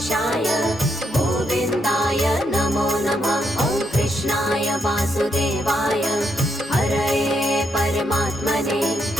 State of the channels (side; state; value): right; noise; hum, 27 dB below the sound